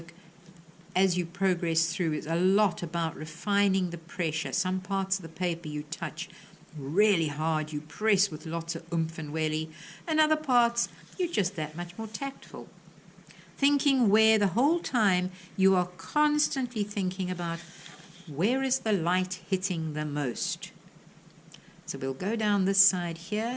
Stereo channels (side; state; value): both; identical; correlation 1.00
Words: as you progress through is a lot about refining the pressure. Some parts of the paper you touch really hard, you press with lots of oomph and welly, and other parts you're just that much more tactful. Thinking where the whole time you are constantly thinking about where is the light hitting the most. So we'll go down this side